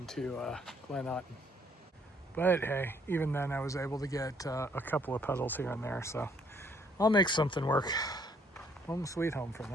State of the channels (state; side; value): normal; both; correlation 0.66